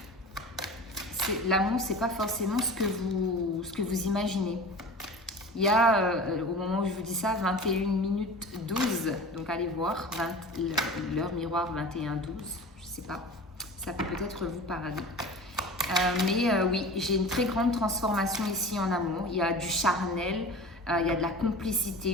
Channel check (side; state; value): both; normal; correlation 0.36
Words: l'amour, c'est pas forcément ce que vous imaginez. Il y a, au moment où je vous dis ça, 21 minutes 12, donc allez voir, l'heure miroir 21-12, je sais pas, ça peut peut-être vous parler. Oui, j'ai une très grande transformation ici en amour. Il y a du charnel, il y a de la